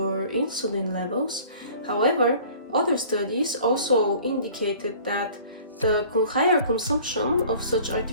insulin levels. However, other studies also indicated that the higher consumption of such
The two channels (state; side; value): inverted; both; correlation -0.48